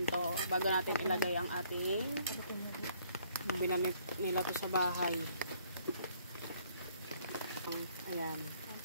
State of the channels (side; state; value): both; inverted; correlation -0.64